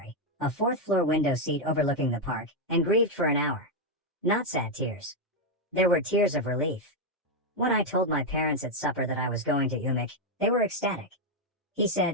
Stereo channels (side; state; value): both; normal; correlation 0.02